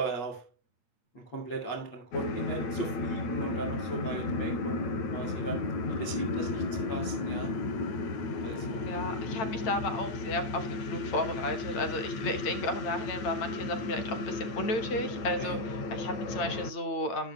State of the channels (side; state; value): right; late; 8.7 ms